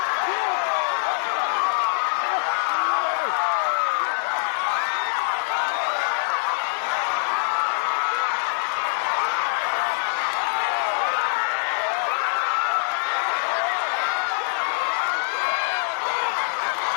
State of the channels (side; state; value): right; silent; digital silence